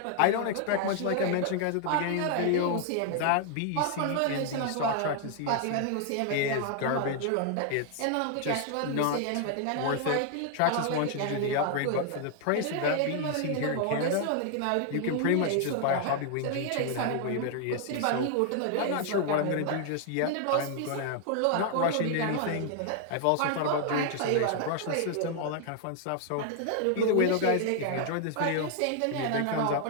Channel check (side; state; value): both; different; correlation 0.00